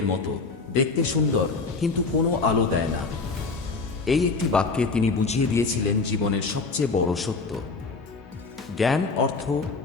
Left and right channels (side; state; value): right; quieter; 4.1 dB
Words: মতো, দেখতে সুন্দর কিন্তু কোনো আলো দেয় না। এই একটি বাক্যে তিনি বুঝিয়ে দিয়েছিলেন জীবনের সবচেয়ে বড় সত্য। জ্ঞান, অর্থ,